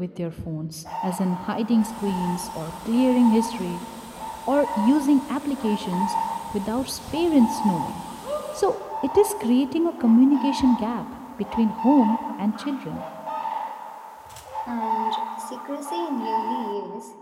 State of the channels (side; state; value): both; identical; correlation 1.00